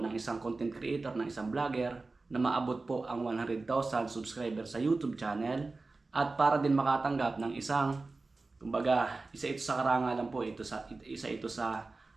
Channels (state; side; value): quieter; left; 3.6 dB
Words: isang content creator, ng isang vlogger na maabot po ang 100,000 subscribers sa YouTube channel at para din makatanggap ng isang, kumbaga, isa ito sa karangalan po, isa ito sa